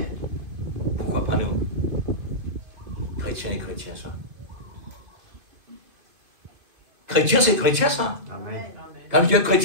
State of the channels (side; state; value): left; late; 2.5 ms